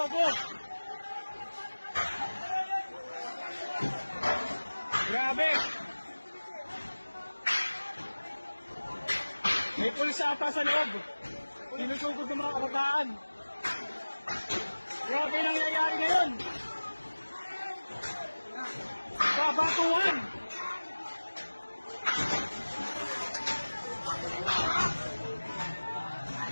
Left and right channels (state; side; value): inverted; both; correlation -1.00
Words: Grabe. May pulis ata sa loob. Sinusugod ng mga kabataan. Grabe nangyayari ngayon. Babatuhan.